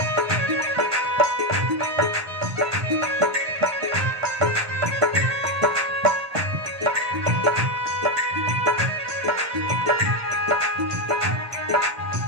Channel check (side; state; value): left; late; 1.2 ms